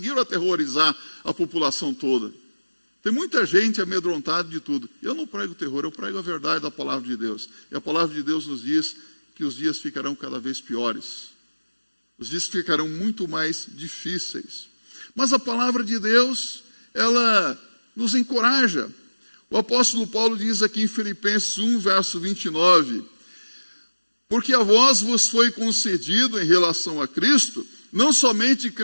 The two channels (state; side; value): inverted; both; correlation -1.00